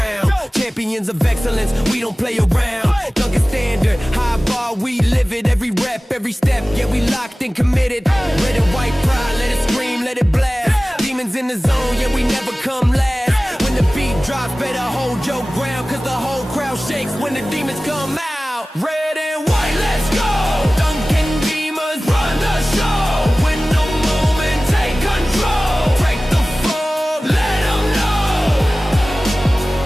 Champions of excellence, we don't play around. Duncan standard, high bar, we live it. Every rep, every step, yeah, we locked and committed. Red and white pride, let it scream, let it blast. Demons in the zone, yeah, we never come last. When the beat drops, better hold your ground, cause the whole crowd shakes when the demons come out. Red and white, let's go! Duncan demons run the show. Win the moment, take control. Break the fog, let them know.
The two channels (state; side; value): normal; both; correlation 0.97